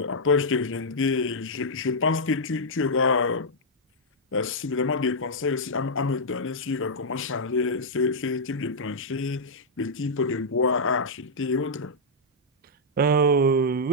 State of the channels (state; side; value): normal; both; correlation -0.07